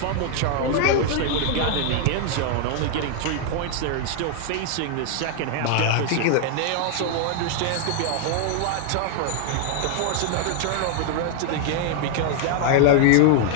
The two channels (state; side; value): different; both; correlation 0.00